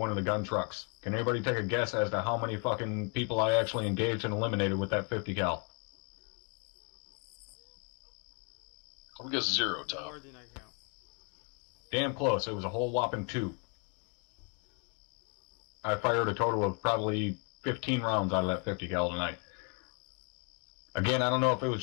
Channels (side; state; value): right; quieter; 35.7 dB